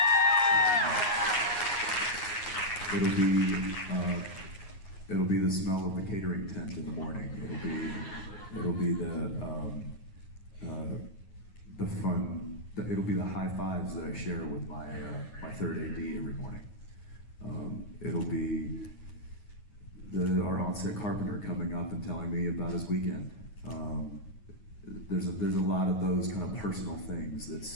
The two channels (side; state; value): right; late; 9.6 ms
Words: It'll be the smell of the catering tent in the morning. It'll be the fun. It'll be the high fives that I share with my third AD every morning. It'll be our on-set carpenter coming up and telling me about his weekend. There's a lot of those kind of personal things.